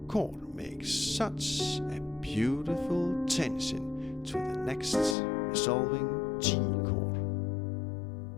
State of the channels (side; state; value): right; drops out; at 5.2 s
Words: chord makes such a beautiful tension to the next resolving G chord.